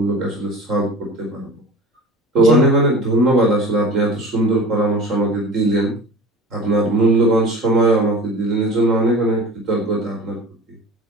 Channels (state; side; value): normal; both; correlation 0.38